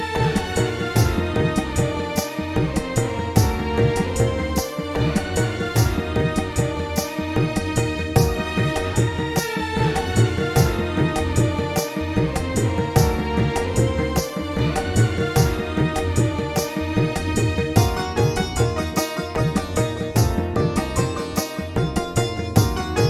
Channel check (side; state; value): both; identical; correlation 1.00